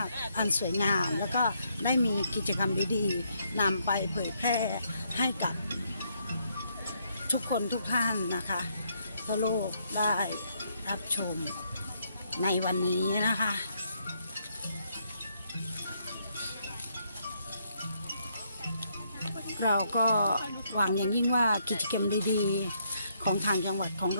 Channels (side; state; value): both; inverted; correlation -0.73